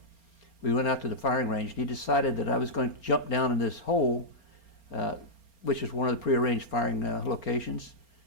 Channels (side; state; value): right; late; 4.3 ms